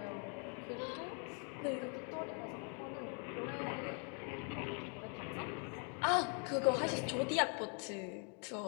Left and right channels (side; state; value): right; quieter; 39.6 dB